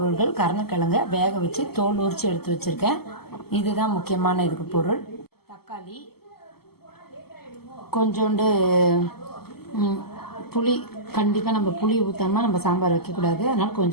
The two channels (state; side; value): late; right; 0.96 ms